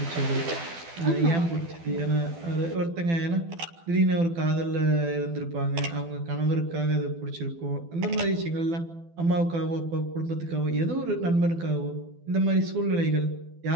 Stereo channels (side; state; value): left; late; 12 ms